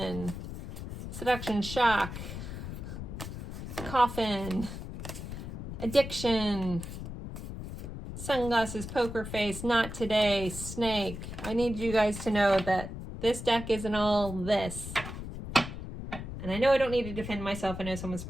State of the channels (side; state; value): left; noise; rumble, 8 dB below the sound